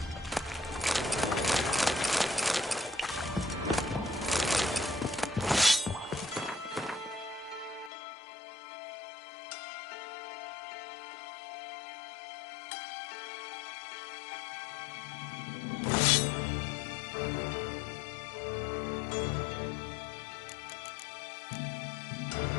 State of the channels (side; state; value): right; drops out; at 7.9 s